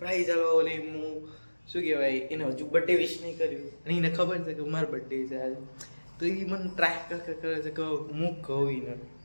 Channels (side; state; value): both; inverted; correlation -1.00